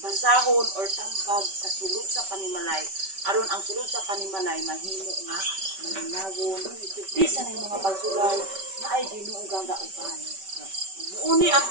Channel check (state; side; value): late; left; 5.2 ms